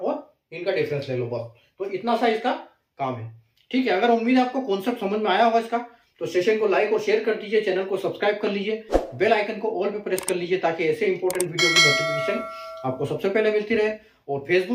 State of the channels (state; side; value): identical; both; correlation 1.00